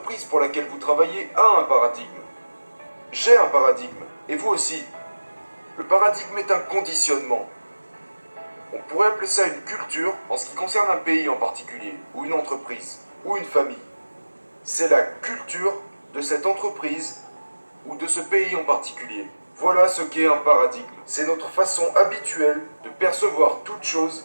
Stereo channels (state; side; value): inverted; both; correlation -1.00